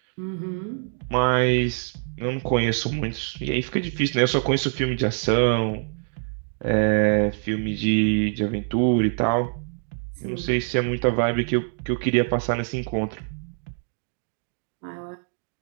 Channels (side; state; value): left; silent; digital silence